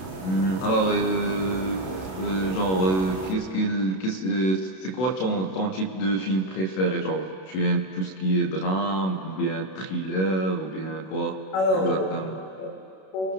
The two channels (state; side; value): late; right; 32 ms